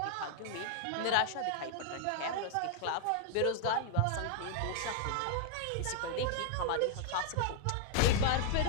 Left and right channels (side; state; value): both; different; correlation 0.00